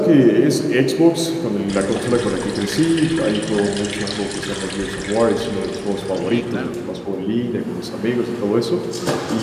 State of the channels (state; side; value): identical; both; correlation 1.00